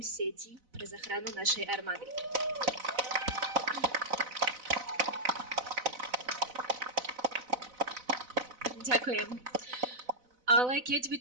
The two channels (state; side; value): late; left; 4.0 ms